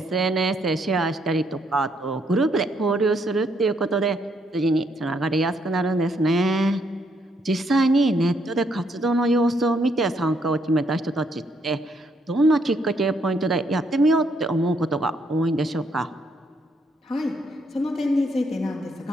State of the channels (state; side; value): normal; both; correlation 0.73